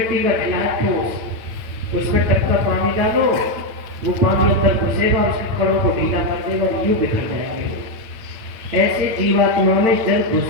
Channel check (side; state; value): left; late; 9.0 ms